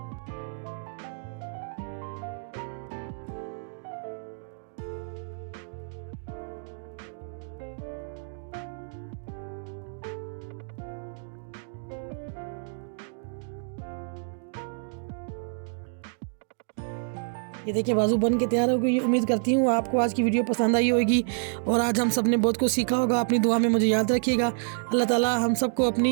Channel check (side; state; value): left; silent; digital silence